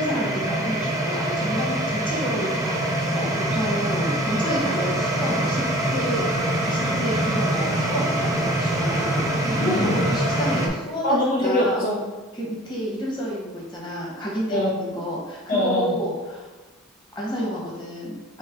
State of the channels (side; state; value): both; normal; correlation 0.46